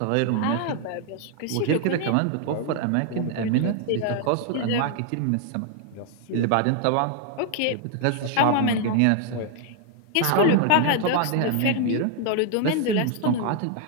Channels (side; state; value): both; different; correlation 0.00